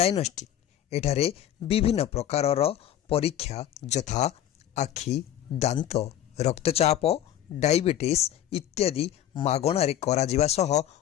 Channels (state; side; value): quieter; right; 11.5 dB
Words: एठारे विभिन्न प्रकारर परीक्षा यथा आखि, दांत, रक्तचाप, डायबिटीज इत्यादि मागणारे कराजिबा सह